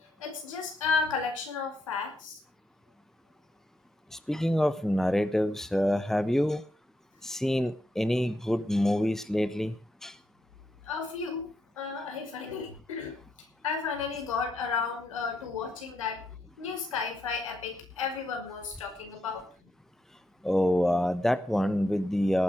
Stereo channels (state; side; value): normal; both; correlation 0.82